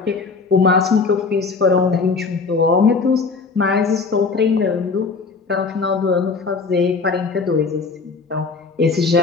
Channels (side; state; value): right; quieter; 4.5 dB